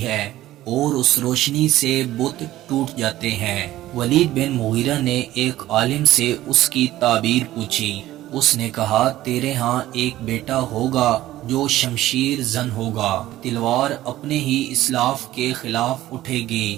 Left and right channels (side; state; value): left; quieter; 15.0 dB